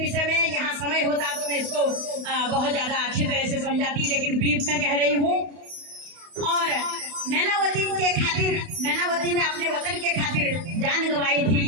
में, यहाँ समय होता तो मैं इसको बहुत ज्यादा अच्छी तरह से समझाती, लेकिन ब्रीफ में कह रही हूँ। और मैनावती ने अपने वतन के खातिर जान गंवाई थी,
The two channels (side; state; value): left; late; 32 ms